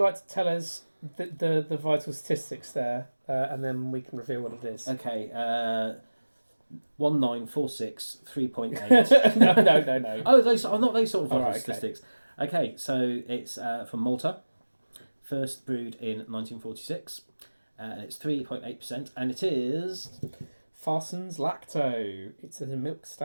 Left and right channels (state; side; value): inverted; both; correlation -1.00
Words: to tell us the vital statistics there, and then we can reveal what it is? Okay, 1946, 3.8. No. Oh, those are not those sort of vital Alright, okay. statistics. Okay, so it's from Malta, first brewed in 1946. It's 3.8%, and it is Farsons Lacto. It's a milk